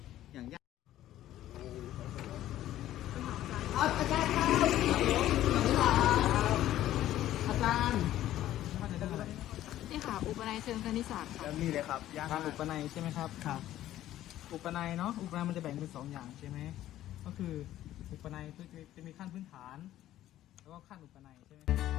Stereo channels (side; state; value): right; quieter; 13.4 dB